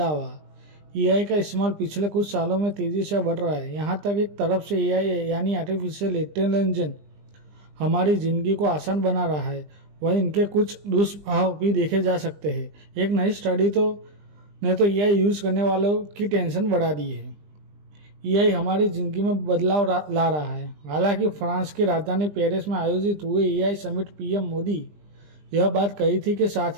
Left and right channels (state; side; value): late; left; 20 ms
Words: एआई का इस्तेमाल पिछले कुछ सालों में तेजी से बढ़ रहा है। यहाँ तक एक तरफ से एआई यानी आर्टिफिशियल इंटेलिजेंस हमारी जिंदगी को आसान बना रहा है, वहीं इनके कुछ दुष्प्रभाव भी देखे जा सकते हैं। एक नई स्टडी ने तो एआई यूज करने वालों की टेंशन बढ़ा दी है। एआई हमारी जिंदगी में बदलाव ला रहा है। हालांकि फ्रांस की राजधानी पेरिस में आयोजित हुए एआई समिट पीएम मोदी यह बात कही थी कि